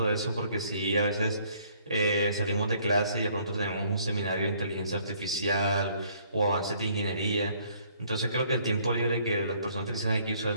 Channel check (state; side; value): inverted; both; correlation -0.62